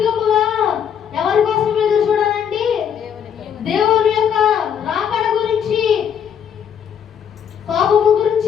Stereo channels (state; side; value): quieter; right; 8.3 dB